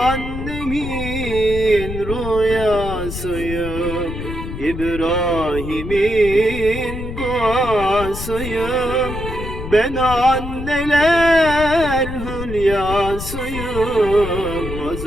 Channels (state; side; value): noise; left; rumble, 7 dB below the sound